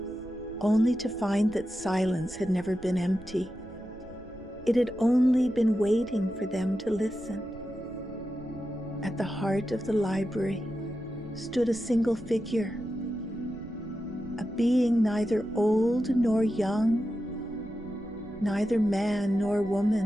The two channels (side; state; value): right; noise; rumble, 19 dB below the sound